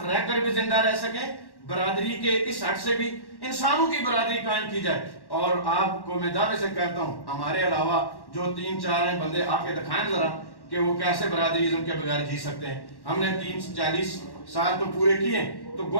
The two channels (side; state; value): right; late; 1.1 ms